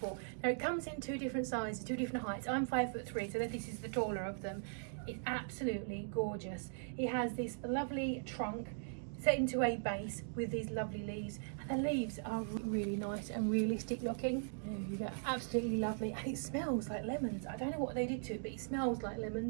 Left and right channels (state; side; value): silent; left; digital silence